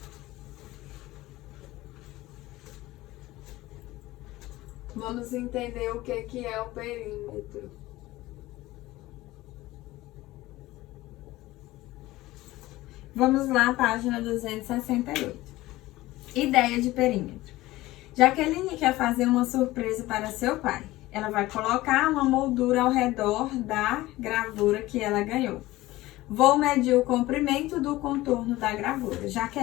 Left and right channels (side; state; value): right; quieter; 17.9 dB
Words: Vamos entender o que é o perímetro. Vamos lá, página 268. Ideia de perímetro. Jaqueline quer fazer uma surpresa para seu pai. Ela vai colocar uma moldura ao redor da gravura que ela ganhou. Vou medir o comprimento do contorno da gravura.